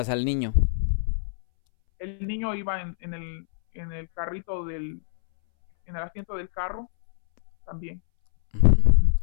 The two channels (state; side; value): silent; right; 61 dB below the other